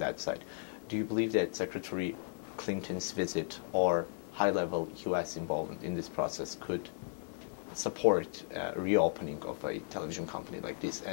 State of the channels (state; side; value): silent; right; digital silence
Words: side. Do you believe that Secretary Clinton's visit or high-level U.S. involvement in this process could support reopening of a television company like this?